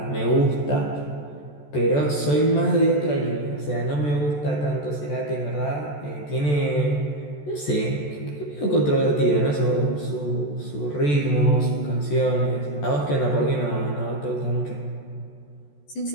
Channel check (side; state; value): right; late; 14 ms